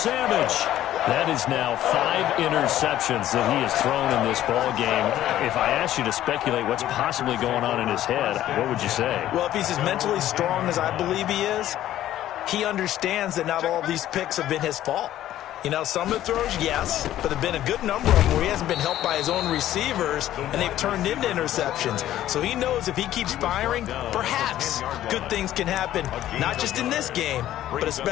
That is now 5 interceptions that he has thrown in this ball game. If I asked you to speculate what's possibly going on in his head, what would you say? Well, if he's as mentally strong as I believe he is, he understands that not all of these picks have been his fault. You know, some of the throws, yes, but there have been a good number of them where he hasn't been helped by his own receivers, and they've turned into interceptions. So he knows if he keeps firing, perhaps good things can happen, not just in this game, but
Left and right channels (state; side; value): quieter; right; 13.0 dB